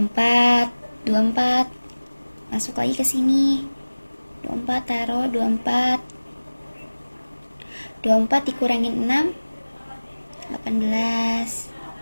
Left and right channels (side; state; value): both; inverted; correlation -1.00